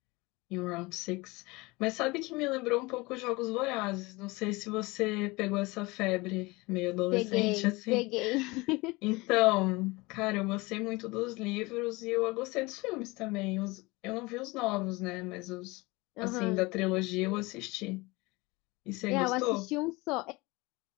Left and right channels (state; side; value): quieter; right; 23.6 dB